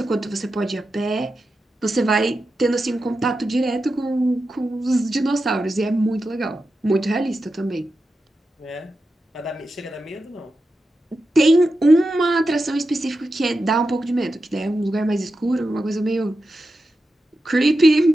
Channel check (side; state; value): both; normal; correlation 0.90